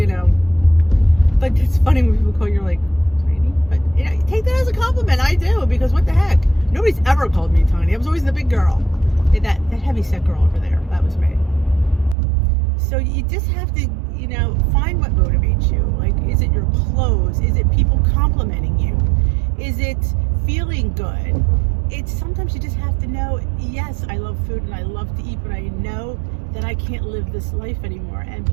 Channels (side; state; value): left; drops out; at 12.2 s